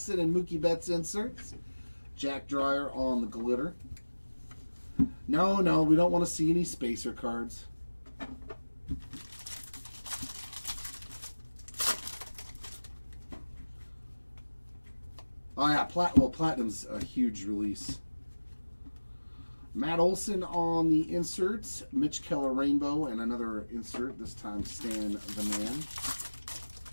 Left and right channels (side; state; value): both; inverted; correlation -1.00